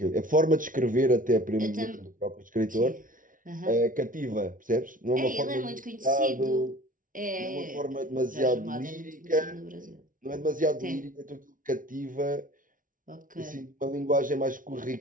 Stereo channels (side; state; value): left; late; 0.39 ms